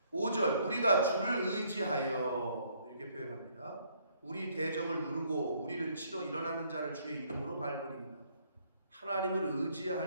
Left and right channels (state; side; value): inverted; both; correlation -0.66